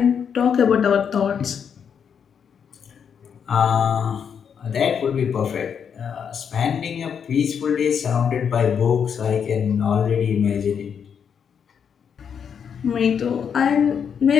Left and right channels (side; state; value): right; quieter; 7.4 dB